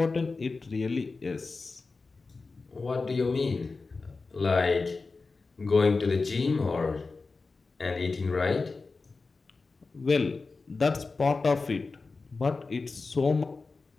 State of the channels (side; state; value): right; quieter; 4.0 dB